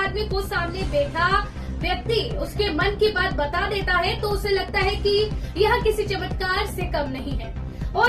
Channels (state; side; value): identical; both; correlation 1.00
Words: को सामने बैठा व्यक्ति उसके मन की बात बता देता है तो उसे लगता है कि यह किसी चमत्कार से कम नहीं है